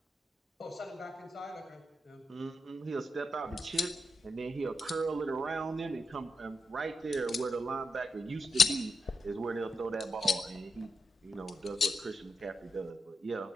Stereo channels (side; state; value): both; normal; correlation 0.85